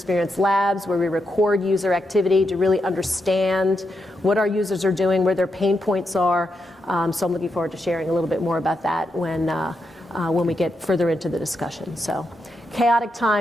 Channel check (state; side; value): normal; both; correlation 0.84